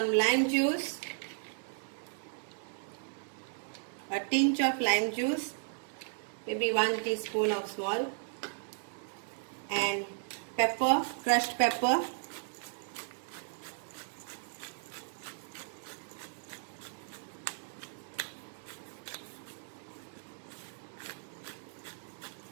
lime juice, a tinge of lime juice, maybe 1 teaspoon of small, and pepper, crushed pepper.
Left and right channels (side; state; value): left; silent; digital silence